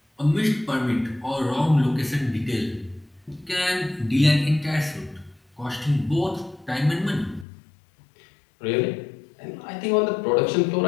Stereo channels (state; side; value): drops out; right; at 7.5 s